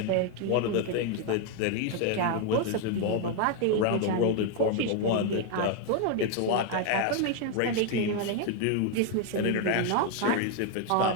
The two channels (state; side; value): different; both; correlation 0.01